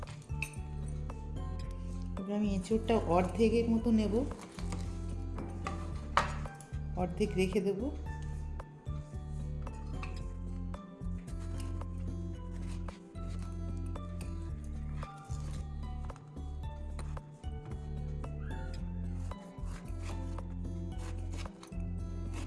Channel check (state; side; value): identical; both; correlation 1.00